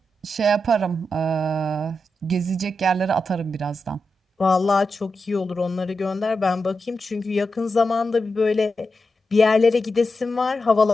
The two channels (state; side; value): normal; both; correlation 0.88